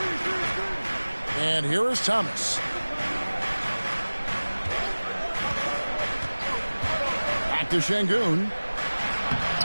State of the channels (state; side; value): inverted; both; correlation -1.00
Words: And here is Thomas. To Şengün.